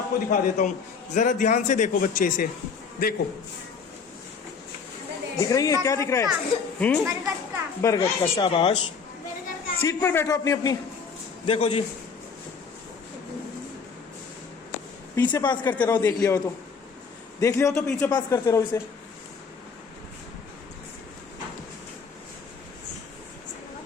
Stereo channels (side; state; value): right; quieter; 5.5 dB